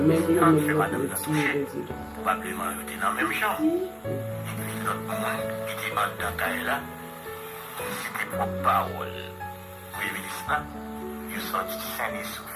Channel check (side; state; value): both; identical; correlation 1.00